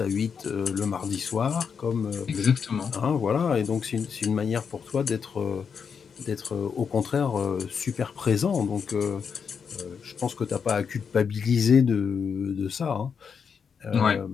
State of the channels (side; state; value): right; quieter; 6.4 dB